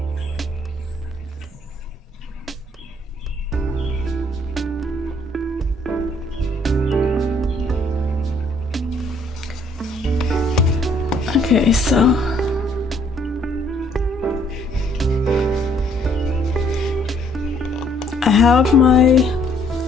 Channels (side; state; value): both; normal; correlation 0.64